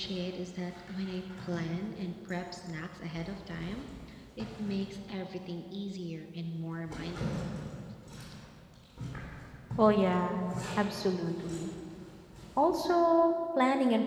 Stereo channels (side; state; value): both; identical; correlation 1.00